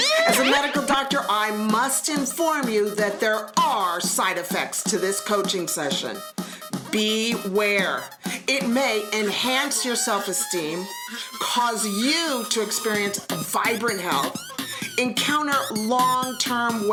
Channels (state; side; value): identical; both; correlation 1.00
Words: As a medical doctor, I must inform you that there are side effects to this coaching session. Beware. It may enhance your self-esteem, cause you to experience vibrant health, encounter long-term